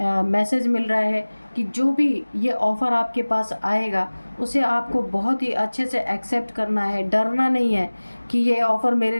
मैसेज मिल रहा है कि जो भी ये ऑफ़र आपके पास आएगा उसे आपको बहुत ही अच्छे से एक्सेप्ट करना है। डरना नहीं है कि ये ऑफ़र मेरे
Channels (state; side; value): inverted; both; correlation -1.00